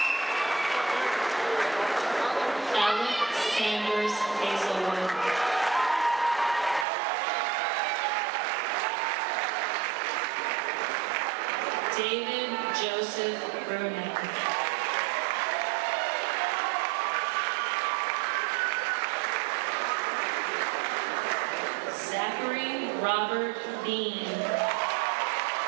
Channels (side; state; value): left; drops out; at 6.9 s